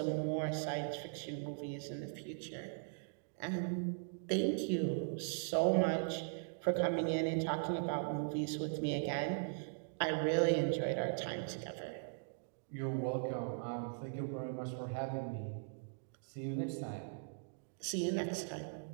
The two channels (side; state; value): left; silent; digital silence